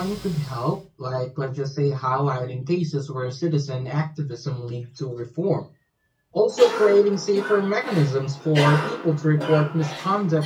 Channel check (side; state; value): both; identical; correlation 1.00